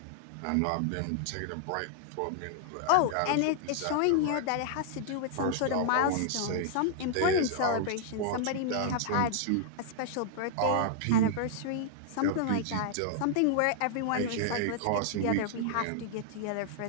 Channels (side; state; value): both; different; correlation -0.01